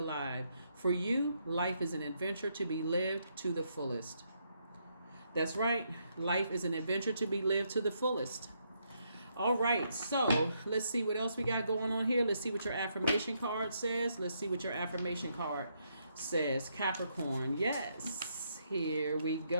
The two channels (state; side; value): inverted; both; correlation -0.76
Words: For you, life is an adventure to be lived to the fullest. That's right. Life is an adventure to be lived to the fullest. All right, so let's see what else we got going on here. Let's see what your affirmation card says. Capricorn. Yes, here we